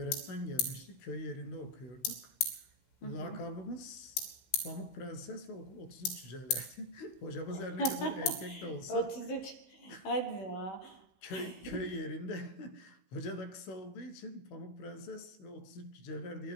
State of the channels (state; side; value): late; right; 15 ms